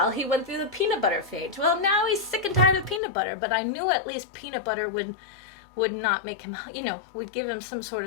he went through the peanut butter phase. Well, now he's sick and tired of peanut butter, but I knew at least peanut butter would not make him, you know, would give him some sort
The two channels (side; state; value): right; drops out; at 3.0 s